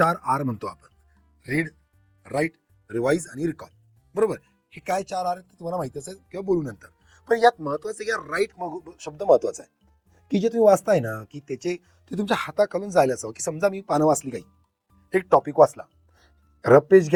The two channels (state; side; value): identical; both; correlation 1.00